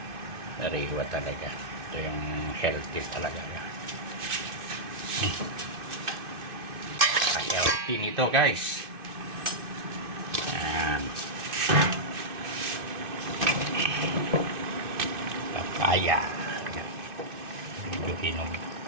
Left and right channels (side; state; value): left; late; 2.5 ms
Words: Nariwa talaga. Ito yung healthy talaga. Healthy nito guys. Ayan. Papaya. Medyo hinog.